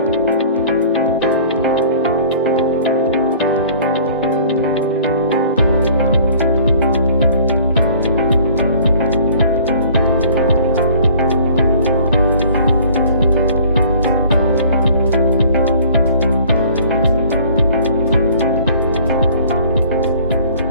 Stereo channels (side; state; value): both; inverted; correlation -0.52